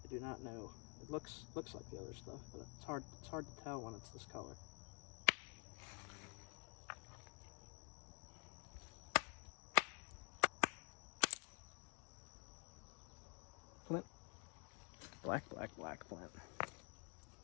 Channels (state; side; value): quieter; right; 34.6 dB